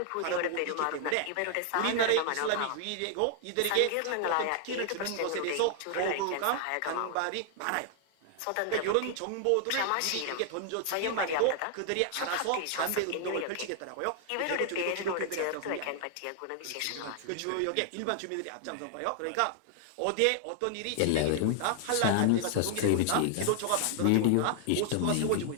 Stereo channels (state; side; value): different; both; correlation 0.00